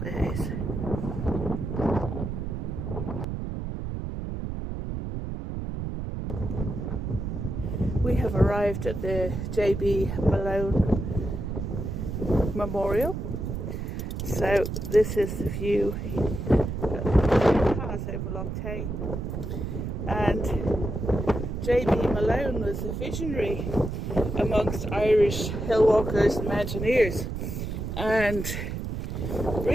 is. We have arrived at the J.B. Malone Memorial. So this is the view that has over Lough Tay. And J.B. Malone was a visionary amongst Irish hill walkers and mountaineers. And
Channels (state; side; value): noise; right; rumble, 4 dB below the sound